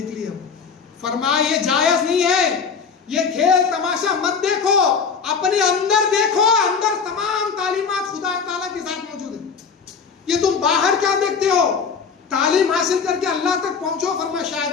लिया। फरमाया ये जायज नहीं है, ये खेल तमाशा मत देखो, अपने अंदर देखो, अंदर तमाम तालीमात खुदा ताला के साथ मौजूद है। ये तुम बाहर क्या देखते हो? तालीम हासिल करके अल्लाह तक पहुंचो। फरमाया शायद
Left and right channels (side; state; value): right; quieter; 5.8 dB